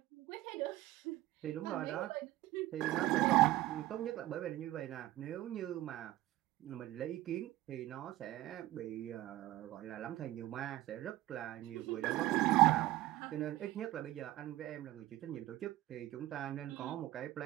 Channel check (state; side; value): quieter; left; 16.2 dB